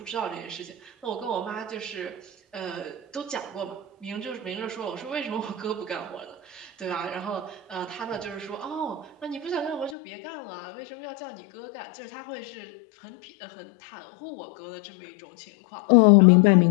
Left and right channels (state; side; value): drops out; right; at 10.0 s